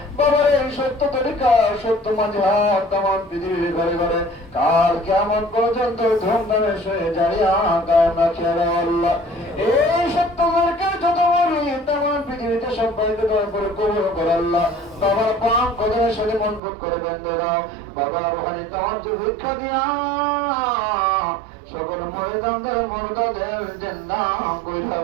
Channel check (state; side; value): drops out; left; at 16.6 s